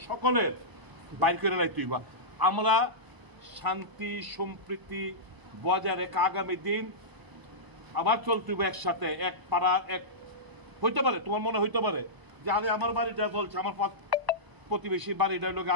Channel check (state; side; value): late; left; 1.0 ms